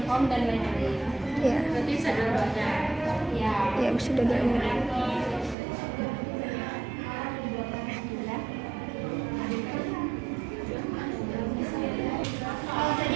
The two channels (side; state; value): left; drops out; at 5.6 s